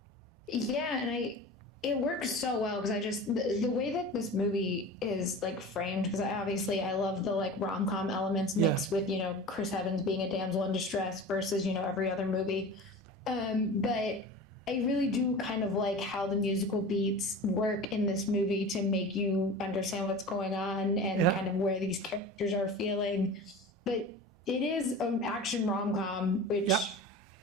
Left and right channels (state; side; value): normal; both; correlation 0.34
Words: Yeah, and it works so well because I just the way that this movie is like framed, because I love the like rom-com elements Yeah. mixed with, Chris Evans being a damsel in distress versus, every other movie. But I really do kind of like how the musical beats work in this movie to make you understand what's going on and Yeah. kind of where these characters are feeling. But it is an action rom-com, Yep. which